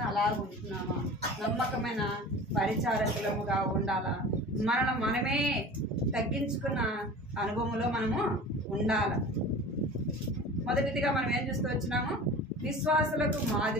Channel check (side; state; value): both; normal; correlation 0.38